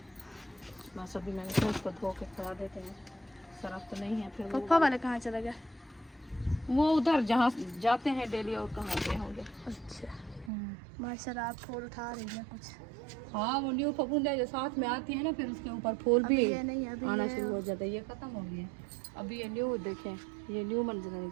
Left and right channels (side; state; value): left; drops out; at 10.5 s